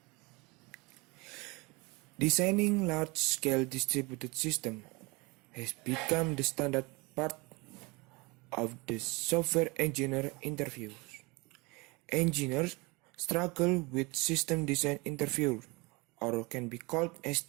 Designing large-scale distributed systems has become the standard part of the software engineer interviews. Engineers struggle with system design interviews, or can be called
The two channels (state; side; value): quieter; left; 26.1 dB